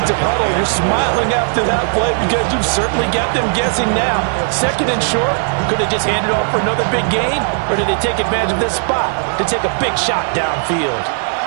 huddle. You're smiling after that play because you've certainly got them guessing now. Second and short, could they just hand it off for another big gain? Or did they take advantage of this spot to take a big shot downfield?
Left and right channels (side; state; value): left; silent; 67 dB below the other